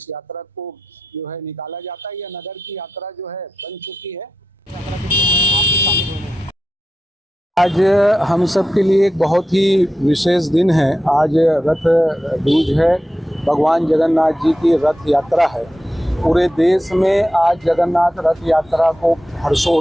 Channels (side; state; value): both; normal; correlation 0.90